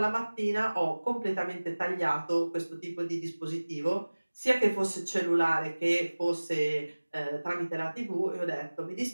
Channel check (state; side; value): inverted; both; correlation -1.00